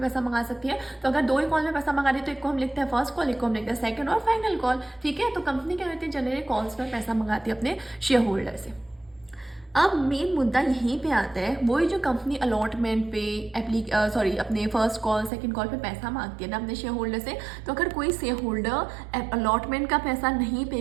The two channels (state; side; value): drops out; left; at 15.3 s